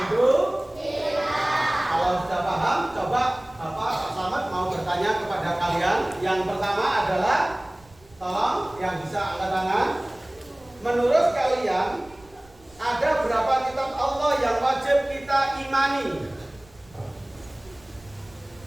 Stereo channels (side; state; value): right; noise; rumble, 26 dB below the sound